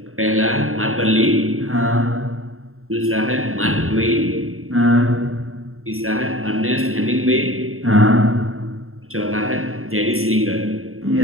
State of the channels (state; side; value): late; left; 0.62 ms